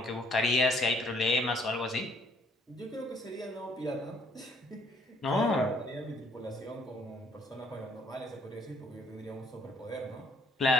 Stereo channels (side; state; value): both; normal; correlation 0.64